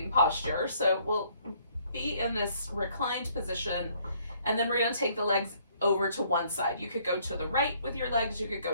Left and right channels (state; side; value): inverted; both; correlation -0.64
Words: posture. So we'll be in this reclined position, and then we're going to take the legs over to one side. You could go to the right with your legs, you could